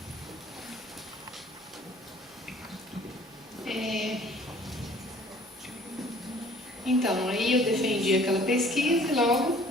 Então, aí eu defendi aquela pesquisa e logo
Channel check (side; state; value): both; normal; correlation 0.53